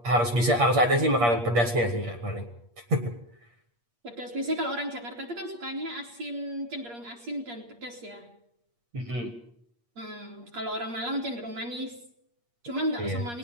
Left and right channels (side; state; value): left; late; 8.5 ms